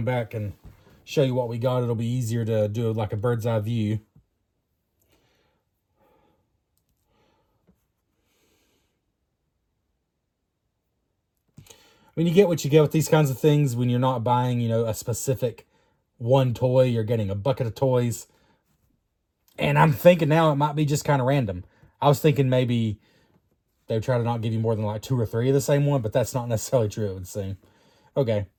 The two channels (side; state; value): both; identical; correlation 1.00